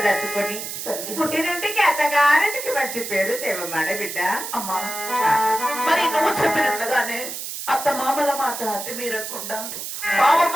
దాచుకొని పుట్టినంటికి అత్తగారింటికి మంచి పేరు దేవమ్మాడ బిడ్డ. అమ్మా మరి నువ్వు చెప్పినట్లుగానే అత్త మామల మాట అతి మీరకుండా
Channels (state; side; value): noise; right; hiss, 7 dB below the sound